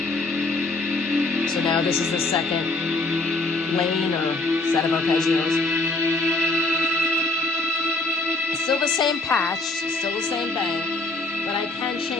So now this is the second lane or set of arpeggios. It's still the same patch, still the same bang, but I can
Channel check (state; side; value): quieter; right; 3.0 dB